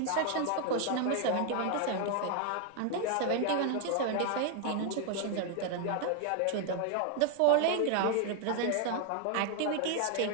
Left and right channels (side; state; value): both; different; correlation 0.00